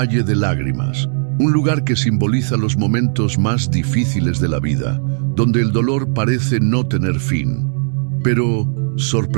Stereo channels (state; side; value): silent; left; digital silence